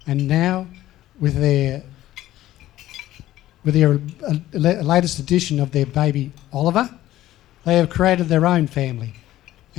and now with their latest addition of their baby Oliver, they have created their own family,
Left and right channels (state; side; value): quieter; right; 14.5 dB